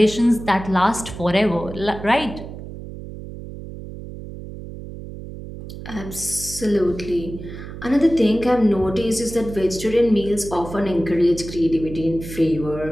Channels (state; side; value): noise; right; hum, 11 dB below the sound